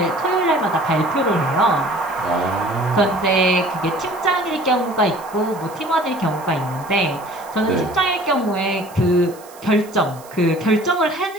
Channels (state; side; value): noise; right; hiss, 22 dB below the sound